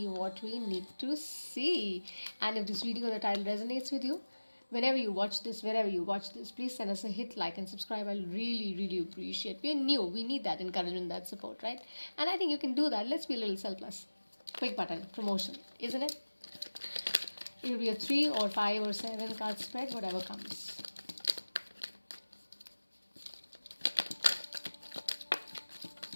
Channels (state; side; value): inverted; both; correlation -1.00